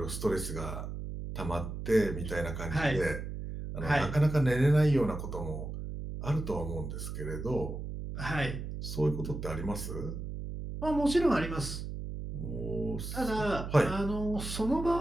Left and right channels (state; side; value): noise; right; hum, 6 dB below the sound